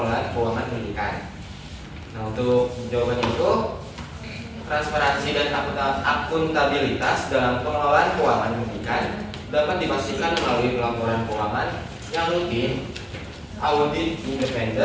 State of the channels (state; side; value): identical; both; correlation 1.00